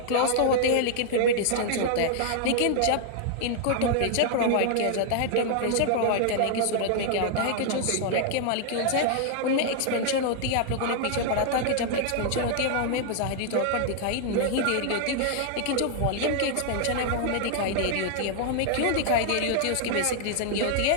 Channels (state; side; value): different; both; correlation 0.00